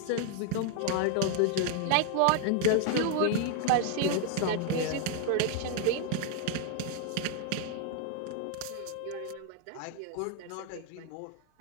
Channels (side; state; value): both; different; correlation 0.00